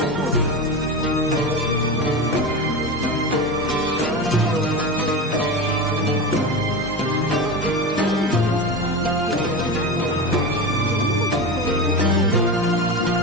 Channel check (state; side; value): noise; left; hum, 25 dB below the sound